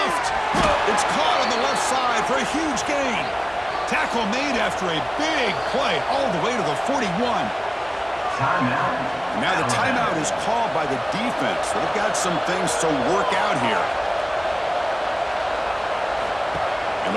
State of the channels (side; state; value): both; identical; correlation 1.00